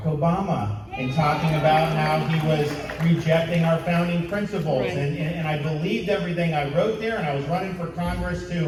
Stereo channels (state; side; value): identical; both; correlation 1.00